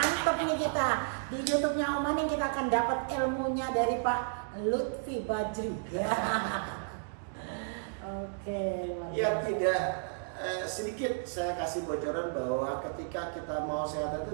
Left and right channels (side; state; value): left; silent; digital silence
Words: nih kita. Di YouTube-nya Oma nih kita akan dapat ilmunya dari Pak Lutfi Bajri. Oke. Ya tidak sedikit saya kasih bocoran bahwa ketika kita mau sehat